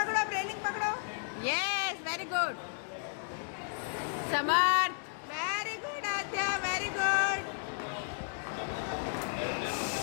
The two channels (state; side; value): silent; right; digital silence